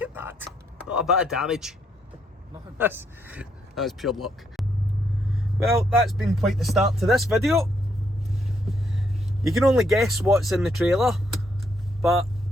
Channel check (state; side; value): normal; both; correlation 0.74